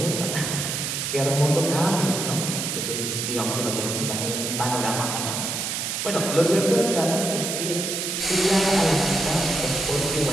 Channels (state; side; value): noise; right; hiss, 2 dB below the sound